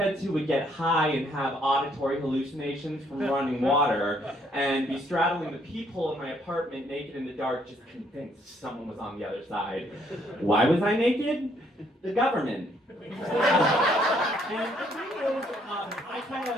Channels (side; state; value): both; normal; correlation 0.68